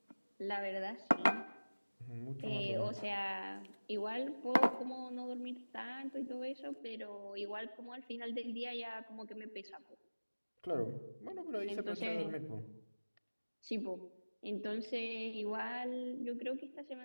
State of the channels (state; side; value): inverted; both; correlation -1.00